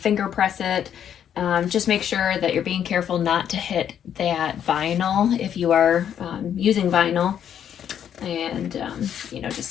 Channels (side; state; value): right; quieter; 9.3 dB